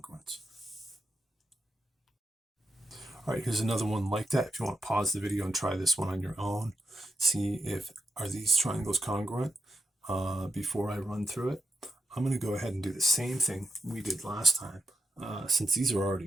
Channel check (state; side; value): normal; both; correlation 0.83